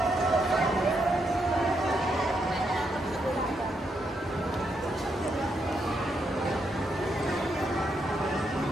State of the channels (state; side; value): normal; both; correlation 0.80